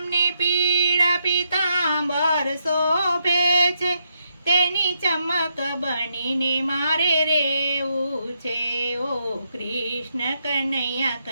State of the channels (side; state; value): both; inverted; correlation -0.79